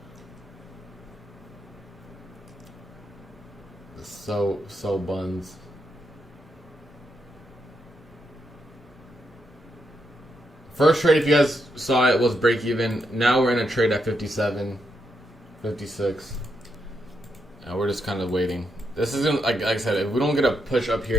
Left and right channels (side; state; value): both; normal; correlation 0.80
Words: So buns. First trade, if you guys saw it, was break even. Now we're in a trade at 57, 56. And we're just kind of waiting. This isn't, like I said, if we don't get a push up here,